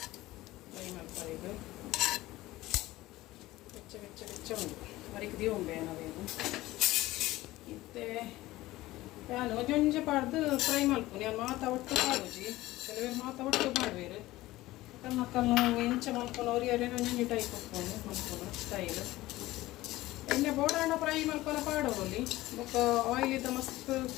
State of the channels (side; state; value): right; quieter; 17.6 dB